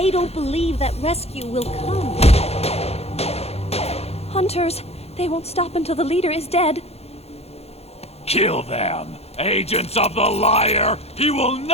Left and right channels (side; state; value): right; late; 0.30 ms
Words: don't believe that rescue will come. Hunters, they won't stop until the leader is dead. Kill them! Agents of the liar! He will